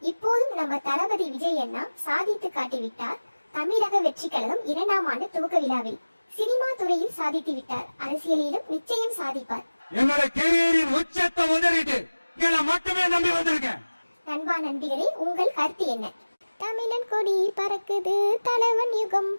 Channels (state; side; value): inverted; both; correlation -1.00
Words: இப்போதும் நம்ம தளபதி விஜய் அண்ணா சாதித்து காட்டிவிட்டார். தமிழக வெற்றி கழகம் 2ஆம் ஆண்டு துவக்க விழாவில் சினிமா துறையில் சாதித்து விட்டார். அரசியலிலும் நிச்சயம் சாதிப்பார். என்னோட கேரியரின் உச்சத்தை உதறிட்டு மட்டுமே நம்பி வந்திருக்கேன். நண்பா நண்பிகளே, உங்கள் கருத்து என்ன? தமிழன் கொடி பறக்குது, தலைவன் யுகம்